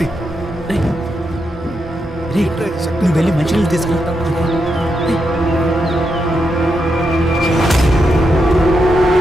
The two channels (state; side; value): normal; both; correlation 0.83